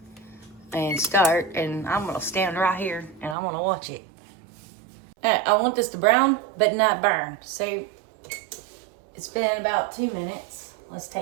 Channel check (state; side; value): drops out; left; at 3.4 s